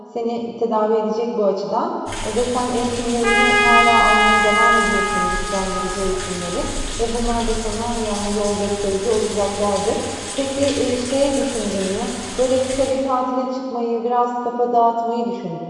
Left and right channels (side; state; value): both; identical; correlation 1.00